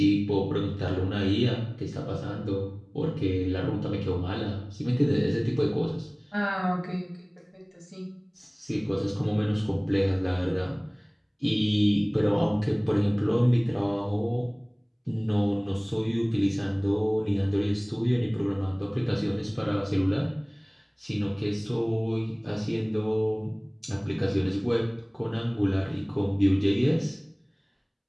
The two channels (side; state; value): both; identical; correlation 1.00